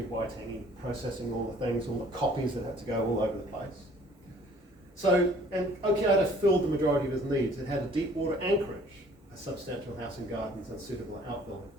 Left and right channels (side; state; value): both; normal; correlation 0.55